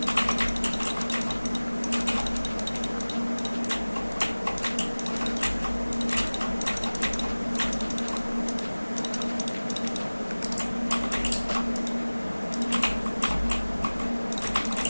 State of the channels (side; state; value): both; inverted; correlation -1.00